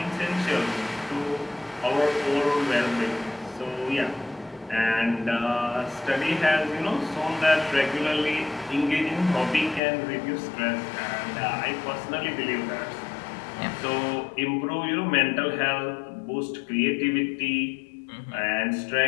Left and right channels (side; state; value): right; drops out; at 9.8 s